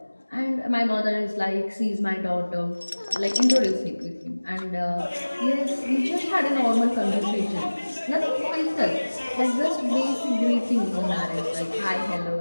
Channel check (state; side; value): inverted; both; correlation -1.00